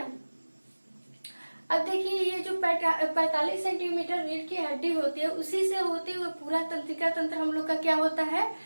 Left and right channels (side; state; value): both; inverted; correlation -1.00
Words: अब देखिए ये जो 45 सेंटीमीटर रीढ़ की हड्डी होती है, उसी से होते हुए पूरा तंत्रिका तंत्र हम लोग का क्या होता है,